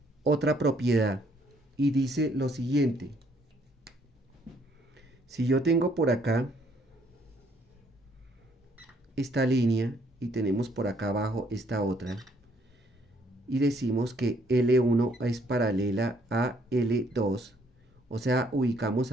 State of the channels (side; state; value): both; normal; correlation 0.67